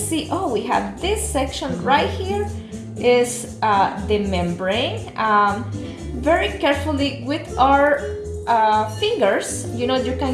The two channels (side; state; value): both; identical; correlation 1.00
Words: oh, we have this section right here is the membrane. Very carefully with our fingers, you know, you